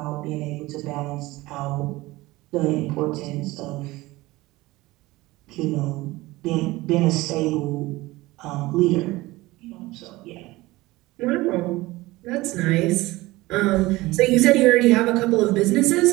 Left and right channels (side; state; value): left; quieter; 19.7 dB